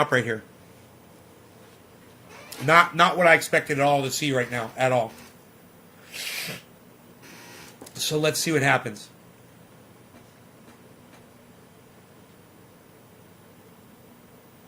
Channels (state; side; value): identical; both; correlation 1.00